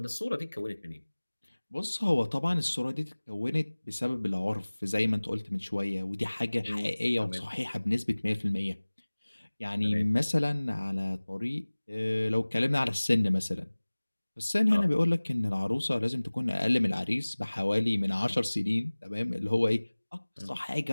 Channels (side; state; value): both; inverted; correlation -1.00